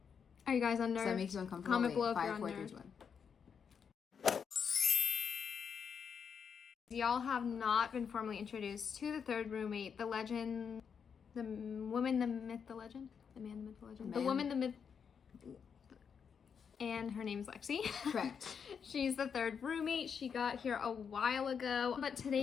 are you guys unnerved? Does that make you uncomfortable? Comment below if 5, you're 4, 3, unnerved. 2, 1. Y'all have not been formally introduced to the third roommate, the legend, the woman, the myth, the legend, the man, the myth, the legend, the woman, the myth, and her name's Lexi. Correct. She's the third roommate. She got here a while ago, but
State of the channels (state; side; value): quieter; right; 6.8 dB